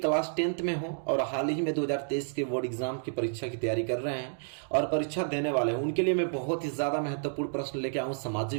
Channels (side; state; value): left; silent; digital silence